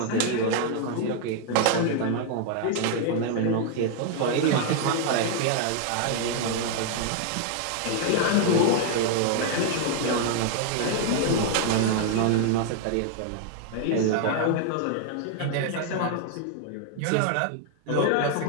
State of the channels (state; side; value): different; both; correlation 0.00